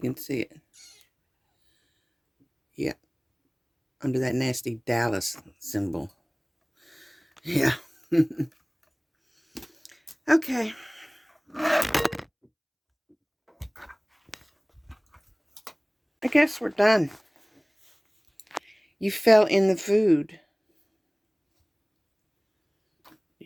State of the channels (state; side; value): identical; both; correlation 1.00